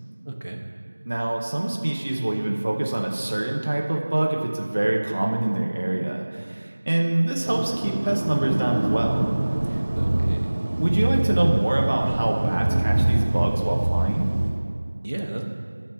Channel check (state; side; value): inverted; both; correlation -1.00